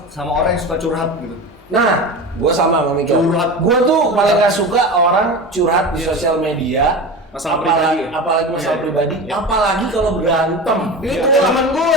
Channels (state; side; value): normal; both; correlation 0.28